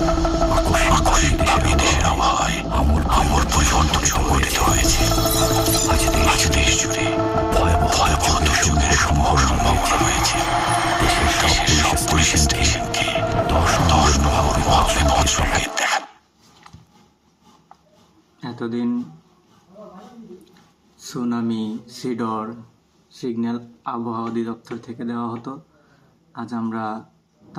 দেশের আবহাওয়ায় আমূল পরিবর্তন সংঘটিত হয়েছে। আজ দেশ জুড়ে ভয়াবহ দুর্যোগের সম্ভাবনা রয়েছে। দেশের সব পুলিশ স্টেশনকে 10 নম্বর মহাবিপদ সংকেত দেখা। এতদিন সুনামি, সিডর সিগন্যাল আবহাওয়া অধিদপ্তর থেকে দেওয়া হতো। আজ আমরা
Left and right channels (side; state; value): both; identical; correlation 1.00